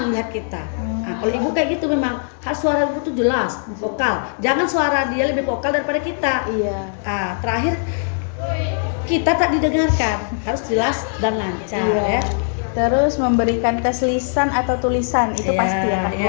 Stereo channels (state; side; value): silent; right; digital silence